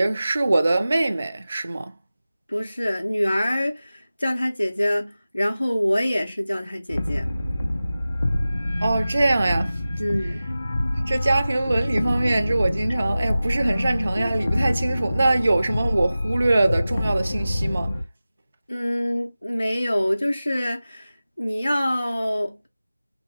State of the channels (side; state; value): both; inverted; correlation -0.96